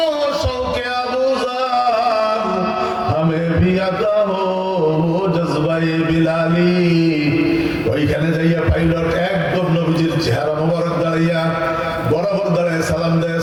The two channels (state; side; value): identical; both; correlation 1.00